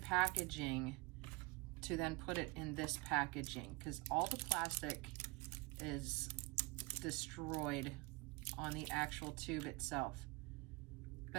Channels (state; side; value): quieter; left; 23.8 dB